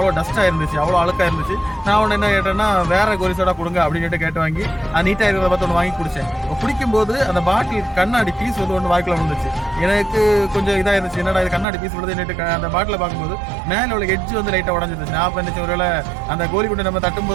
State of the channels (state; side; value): drops out; left; at 11.7 s